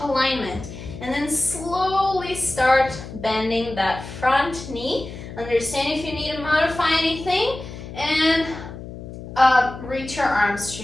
alignment. And then slowly start bending that front knee. Understand if you need to modify anything, and reach your arms to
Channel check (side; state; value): left; noise; hum, 12 dB below the sound